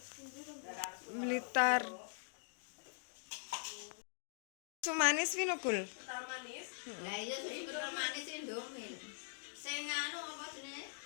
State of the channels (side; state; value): right; silent; digital silence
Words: Blitar. Sumanis wi lho Gul. Kental manis. Lah iya sing kental manis Indomie. Sing anu apa jenenge?